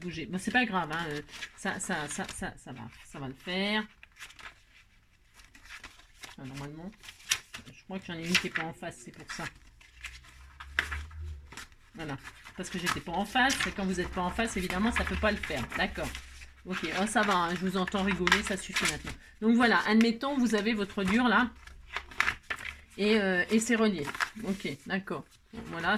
Bon, c'est pas grave, hein, ça va le faire. Enfin, normalement, je crois que j'en ai une qui n'est pas en face, c'est pour ça. Voilà, parce que j'étais pas en face. Et quand vous n'êtes pas en face, évidemment, ça peut pas le faire. D'accord. Ok, oh, ça va, hein, je vous entends rigoler, ça suffit maintenant. Donc voilà, admettons, vous avez votre dur là, et c'est relié. Ok, d'accord. Bon, voilà,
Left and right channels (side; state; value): both; identical; correlation 1.00